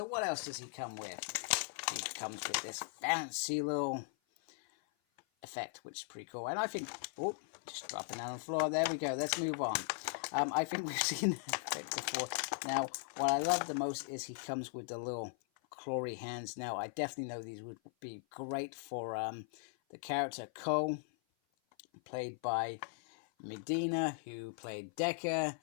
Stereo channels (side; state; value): right; silent; 52 dB below the other